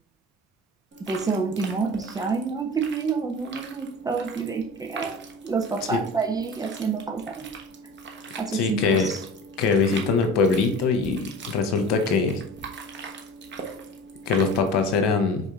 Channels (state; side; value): normal; both; correlation 0.37